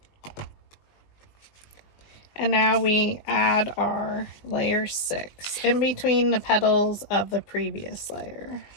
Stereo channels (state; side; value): late; right; 20 ms